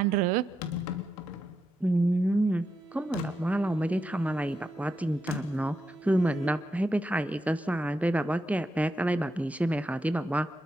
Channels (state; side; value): normal; both; correlation 0.84